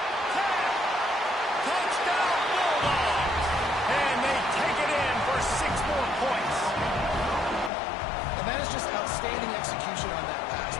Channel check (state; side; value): drops out; right; at 7.7 s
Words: Touchdown Bulldogs! And they take it in for 6 more points. And that is just outstanding execution on that pass.